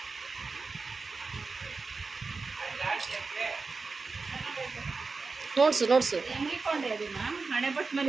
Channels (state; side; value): quieter; left; 4.2 dB